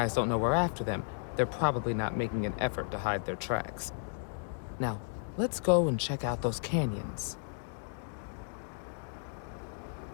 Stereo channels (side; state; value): right; silent; digital silence